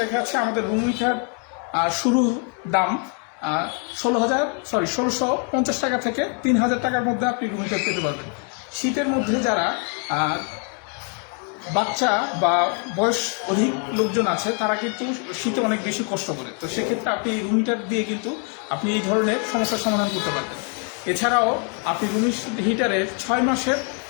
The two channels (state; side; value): quieter; right; 39.9 dB